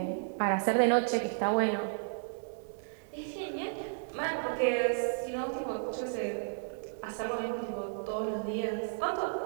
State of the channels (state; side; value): silent; left; digital silence